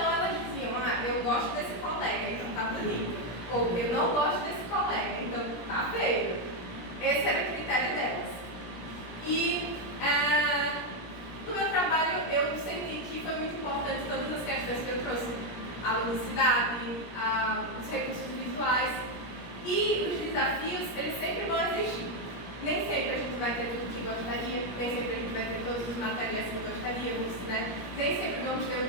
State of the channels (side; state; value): right; late; 17 ms